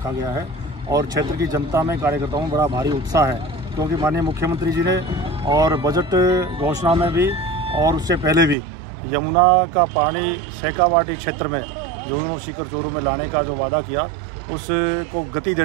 गया है और क्षेत्र की जनता में, कार्यकर्ताओं में बड़ा भारी उत्साह है, क्योंकि माननीय मुख्यमंत्री जी ने और बजट घोषणा में भी और उससे पहले भी यमुना का पानी शेखावाटी क्षेत्र में झुंझुनू सीकर चोरू में लाने का जो वादा किया, उसको गति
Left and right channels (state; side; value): drops out; left; at 8.6 s